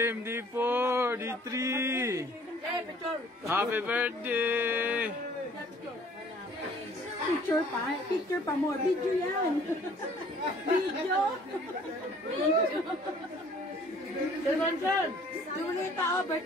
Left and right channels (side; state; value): both; normal; correlation 0.55